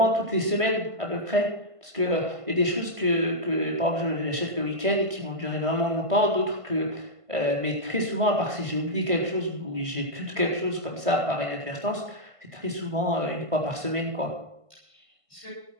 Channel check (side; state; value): left; late; 1.5 ms